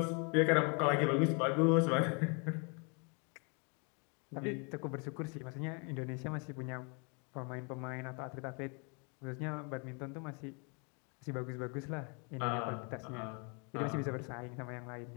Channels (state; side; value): quieter; right; 34.8 dB